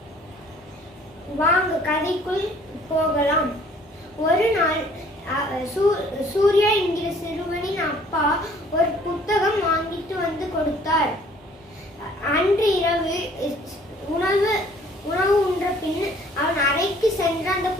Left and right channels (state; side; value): normal; both; correlation 0.57